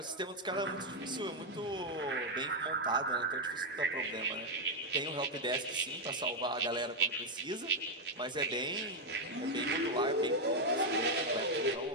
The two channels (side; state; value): both; normal; correlation 0.02